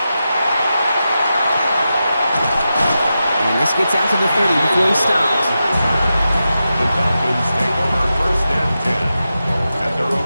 And this gets out to the 30 before he stops. The Falcons take over 1st and 10. At their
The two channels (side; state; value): both; inverted; correlation -0.90